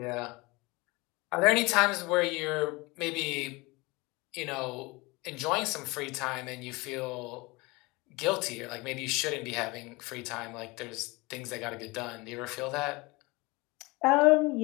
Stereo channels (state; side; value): quieter; right; 24.3 dB